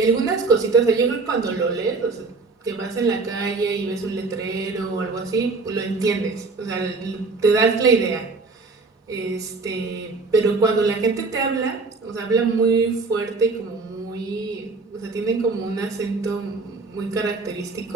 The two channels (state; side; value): quieter; left; 3.9 dB